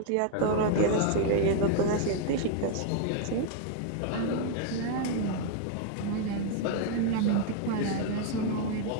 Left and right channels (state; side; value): different; both; correlation 0.00